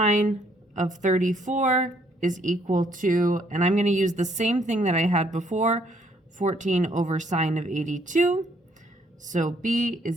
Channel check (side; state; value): both; normal; correlation 0.67